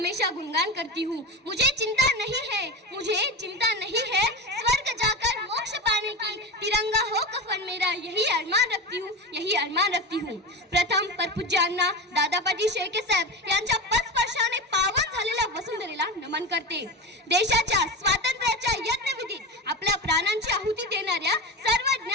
गुणगान करती हूँ। मुझे चिंता नहीं है, मुझे चिंता नहीं है स्वर्ग जाकर मोक्ष पाने की, तिरंगा हो कफन मेरा यही अरमान रखती हूँ, यही अरमान रखती हूँ। प्रथम परपूज्यांना दादापाटी शेळके साहेब यांच्या पदस्पर्शाने पावन झालेल्या वसुंधरेला नमन करते। देशाच्या स्वातंत्र्याच्या यज्ञविधीत आपल्या प्राणांची आहुती देणाऱ्या सर्व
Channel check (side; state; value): both; normal; correlation 0.24